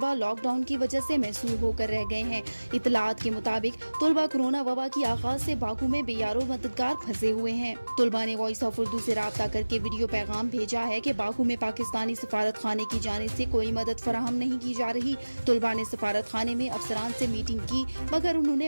लॉकडाउन की वजह से महसूर होकर रह गए हैं। इतलात के मुताबिक तुलबा कोरोना वबा की आगाज से बाकू में बेयारो मददगार फंसे हुए हैं। तुलबा ने वॉइस ऑफ उर्दू से राब्ता करके वीडियो पैगाम भेजा है कि बाकू में पाकिस्तानी सफारत खाने की जानिब से कोई मदद फराहम नहीं की जा रही। तुलबा ने सफारत खाने में अफसरान से मीटिंग की, मगर उन्होंने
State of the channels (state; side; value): inverted; both; correlation -1.00